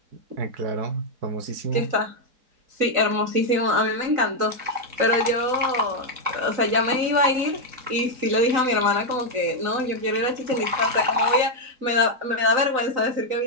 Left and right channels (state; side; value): late; left; 3.9 ms